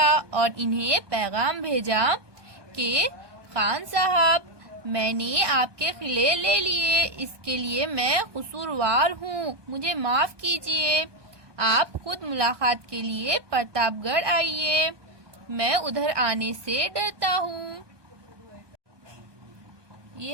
और इन्हें पैगाम भेजा कि खान साहब, मैंने आपके किले ले लिए, इसके लिए मैं कसूरवार हूँ, मुझे माफ कीजिए। आप खुद मुलाकात के लिए प्रतापगढ़ आइए, मैं उधर आने से डरता हूँ।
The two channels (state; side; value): late; left; 1.2 ms